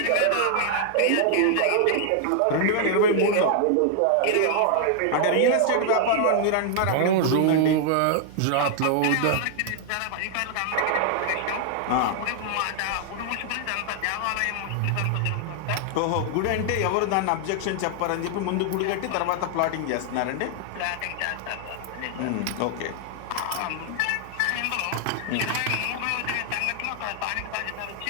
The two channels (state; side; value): different; both; correlation 0.00